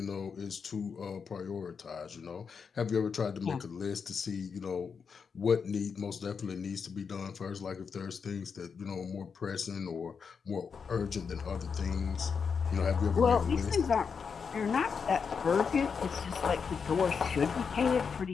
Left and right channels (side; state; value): right; quieter; 6.0 dB